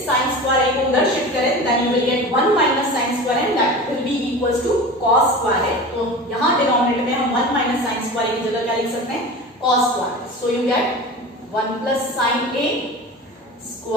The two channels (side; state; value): both; normal; correlation 0.33